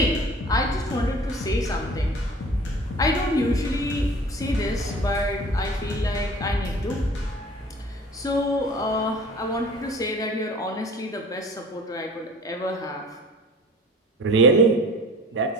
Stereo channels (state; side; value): normal; both; correlation 0.45